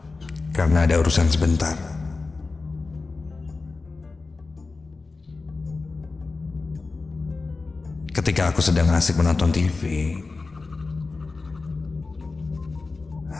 karena ada urusan sebentar. Ketika aku sedang asik menonton TV,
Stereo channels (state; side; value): quieter; right; 3.9 dB